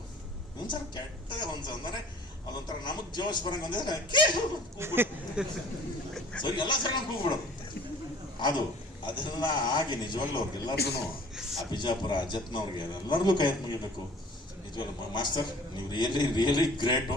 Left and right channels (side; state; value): both; normal; correlation 0.49